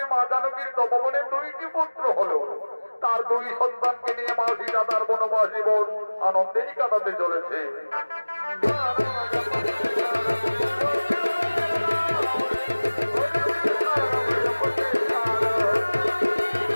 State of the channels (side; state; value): both; inverted; correlation -1.00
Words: মা জানকীর তপবনে 2টি পুত্র হলো। তার 2 সন্তানকে নিয়ে মা সীতা তার বনবাস জীবন আনন্দেই কাটাতে চলেছে।